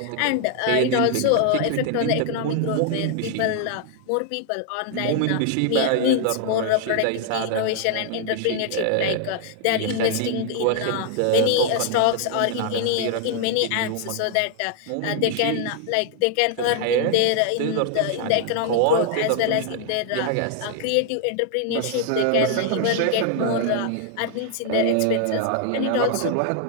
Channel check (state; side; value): different; both; correlation 0.00